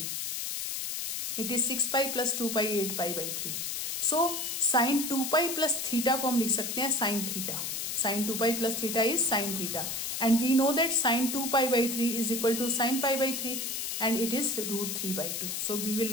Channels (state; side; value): noise; left; hiss, 3 dB below the sound